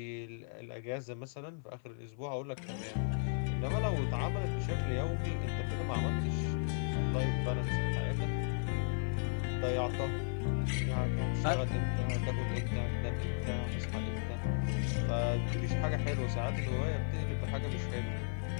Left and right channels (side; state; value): right; silent; 54 dB below the other